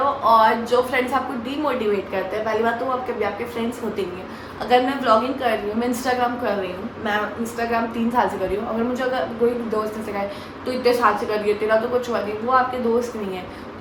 और जो फ्रेंड्स आपको डीमोटिवेट करते हैं, पहली बात तो वो आपके फ्रेंड्स होते नहीं हैं। अगर मैं व्लॉगिंग कर रही हूँ, मैं इंस्टाग्राम कर रही हूँ, मैं इंस्टाग्राम 3 साल से कर रही हूँ, अगर मुझे अगर कोई दोस्त ने सिखाए तो इतने साल से कर रही है, तेरा तो कुछ हुआ नहीं, वो आपके दोस्त नहीं है।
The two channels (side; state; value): both; identical; correlation 1.00